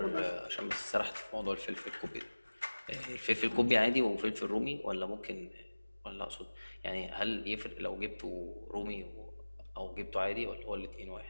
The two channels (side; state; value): both; inverted; correlation -1.00